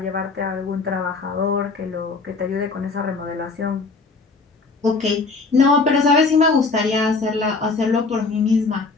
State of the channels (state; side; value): quieter; right; 4.0 dB